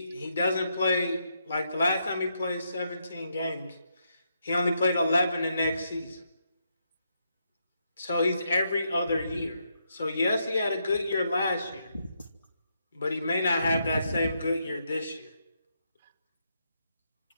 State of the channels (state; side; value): inverted; both; correlation -0.80